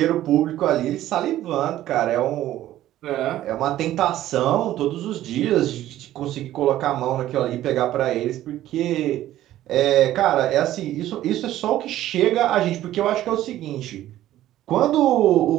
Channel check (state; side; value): quieter; left; 13.6 dB